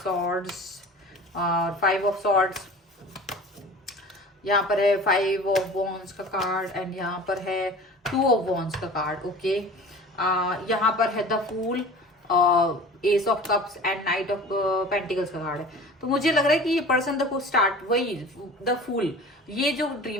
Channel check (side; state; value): both; normal; correlation 0.40